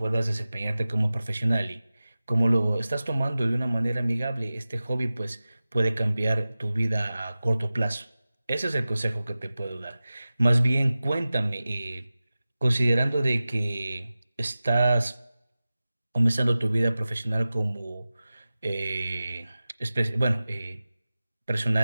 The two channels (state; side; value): inverted; both; correlation -0.96